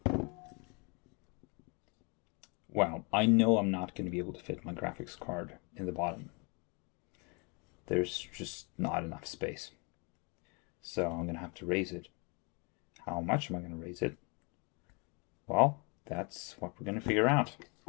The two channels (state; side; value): quieter; right; 32.4 dB